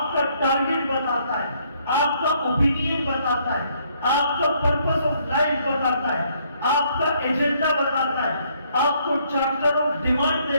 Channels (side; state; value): both; inverted; correlation -0.68